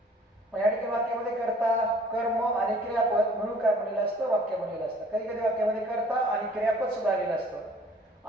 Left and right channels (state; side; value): normal; both; correlation 0.54